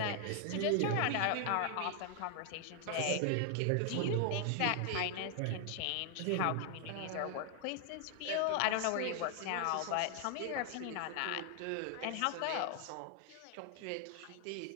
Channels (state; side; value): different; both; correlation 0.00